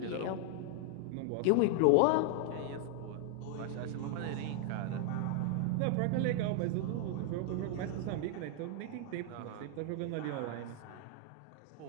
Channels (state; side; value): different; both; correlation 0.00